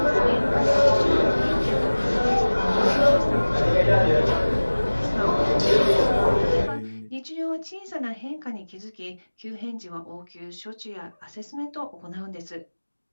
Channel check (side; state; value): both; inverted; correlation -1.00